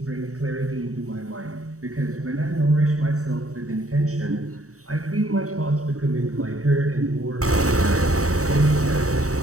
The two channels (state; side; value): late; left; 0.65 ms